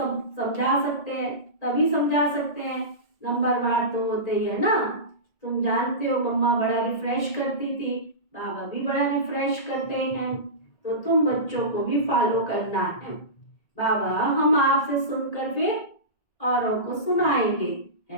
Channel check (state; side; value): late; right; 1.8 ms